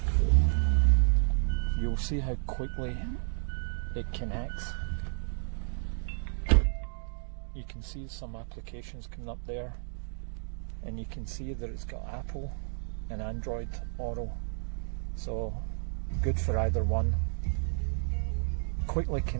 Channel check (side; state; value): left; silent; 57 dB below the other